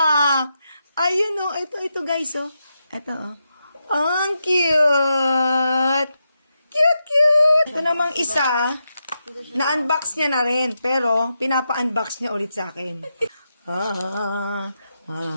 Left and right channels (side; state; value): both; inverted; correlation -0.86